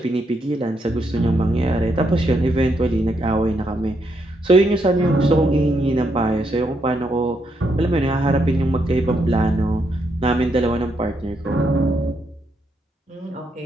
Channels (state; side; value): normal; both; correlation 0.78